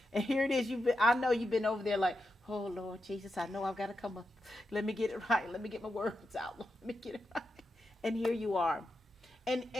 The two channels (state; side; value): normal; both; correlation 0.88